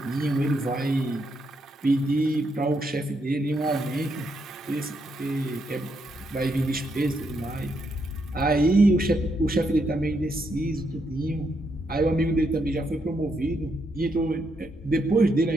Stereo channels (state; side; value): normal; both; correlation 0.78